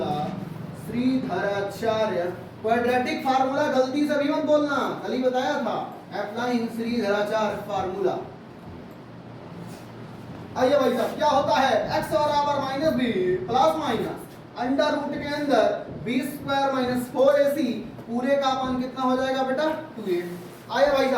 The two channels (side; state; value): both; identical; correlation 1.00